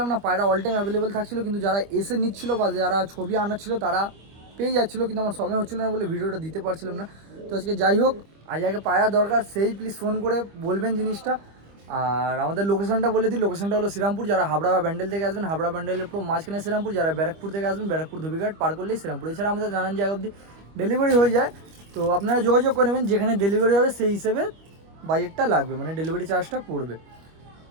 না, পায়রা অল টাইম অ্যাভেলেবেল থাকছিলো, কিন্তু যারা এসে নিচ্ছিল বা যারা ছবি আনাচ্ছিল তারা পেয়ে যাচ্ছিলো, কিন্তু আমার সময় হচ্ছিলো না বলে ভিডিওটা দিতে পারছিলাম না। তো আজকে যাই হোক, আজ আগে পায়রা দরকার, সেই প্লিজ ফোন করে বলবেন জিনিসটা। আর আমাদের লোকেশনটা বলে দিই, লোকেশনটা হলো শ্রীরামপুর। যারা হাবড়া বা ব্যান্ডেল থেকে আসবেন, হাবড়া ব্যান্ডেলের পুরো মাঝখানে শ্রীরামপুর। যারা ব্যারাকপুর থেকে আসবেন, ব্যারাকপুর ধুবিঘাট পার করলেই শ্রীরামপুর। এছাড়া আমাদের নানান জায়গা অবধি ডেলিভারি হয়ে যায়। তো আপনারা যোগাযোগ করে নেবেন, যেখানে ডেলিভারি হবে সেই হিসেবে বাজেটটা লাগবে, মানে ডেলিভারি চার্জটা পড়বে।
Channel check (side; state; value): left; late; 25 ms